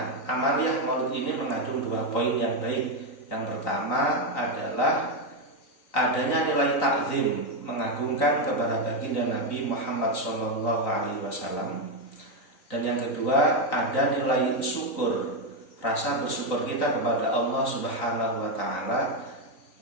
amaliyah maulid ini mengandung 2 poin yang baik. Yang pertama adalah adanya nilai takzim, mengagungkan kepada baginda Nabi Muhammad SAW. Dan yang kedua ada nilai syukur, rasa bersyukur kita kepada Allah Subhanahu wa taala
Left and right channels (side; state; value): right; late; 3.9 ms